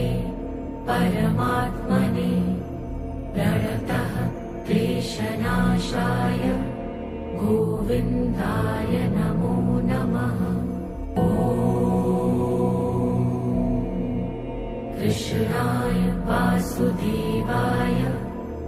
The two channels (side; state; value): both; identical; correlation 1.00